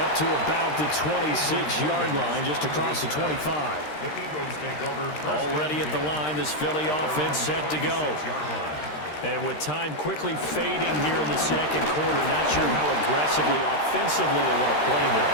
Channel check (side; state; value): right; late; 13 ms